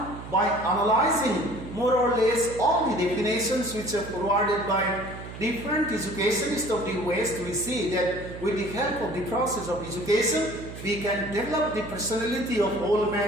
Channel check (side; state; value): right; noise; hum, 12 dB below the sound